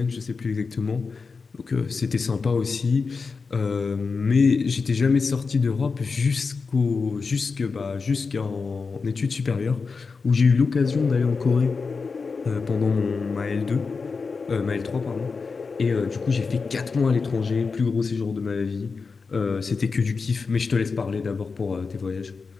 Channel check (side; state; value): right; quieter; 4.7 dB